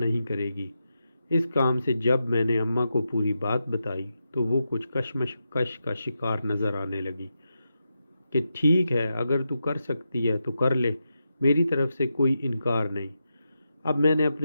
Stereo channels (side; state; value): both; inverted; correlation -0.88